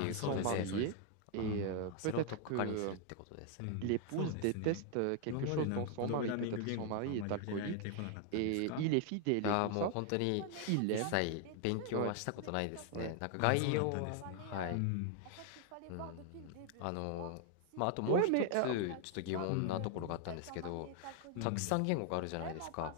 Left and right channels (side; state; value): both; different; correlation 0.00